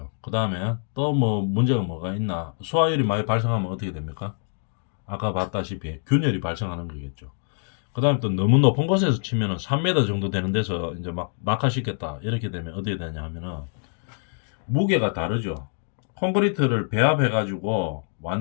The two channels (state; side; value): silent; right; digital silence